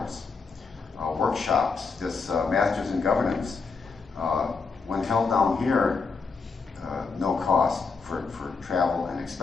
Workshops, this Masters in Governance, when held down here, no cost for travel and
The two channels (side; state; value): right; quieter; 4.8 dB